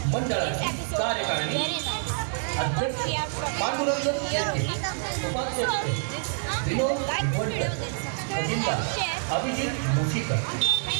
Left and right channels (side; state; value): left; silent; digital silence